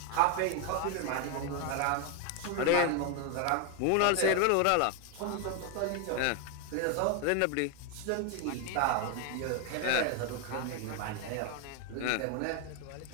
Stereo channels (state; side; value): different; both; correlation 0.01